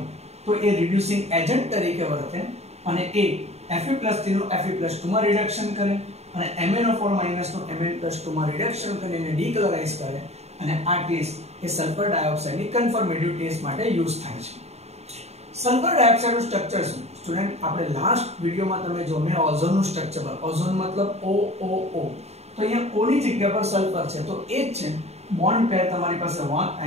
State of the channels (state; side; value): late; left; 0.31 ms